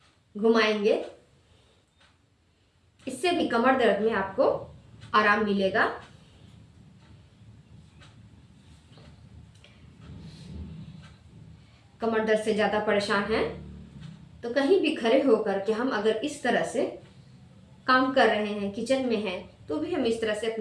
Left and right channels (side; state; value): both; identical; correlation 1.00